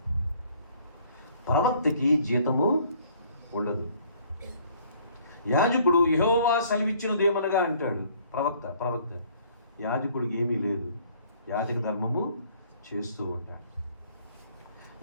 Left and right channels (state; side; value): inverted; both; correlation -0.59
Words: ప్రవక్తకి జీతము ఉండదు. యాజకుడు యెహోవా సెలవిచ్చినదేమనగా అంటాడు. ప్రవక్త యాజకుడికి ఏమీ లేదు, యాజక ధర్మము చేస్తూ ఉంటాడు.